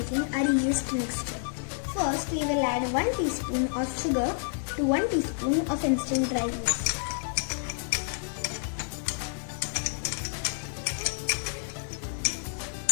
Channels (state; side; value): silent; right; digital silence